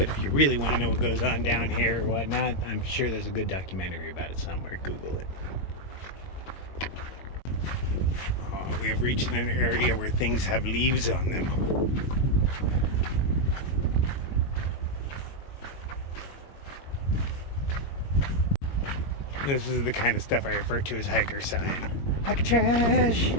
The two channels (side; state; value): right; late; 22 ms